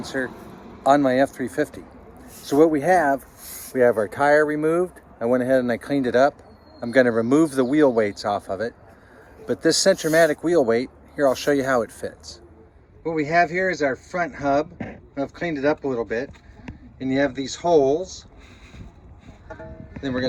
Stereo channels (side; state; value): both; identical; correlation 1.00